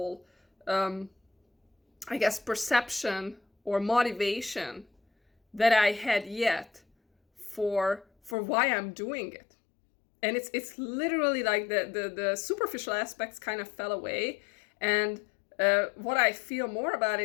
I guess, perception or motivation that I had yet for why I'm doing it. And it's literally like the superficial aspects kind of fell away. And what I feel more about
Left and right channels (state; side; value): drops out; right; at 8.3 s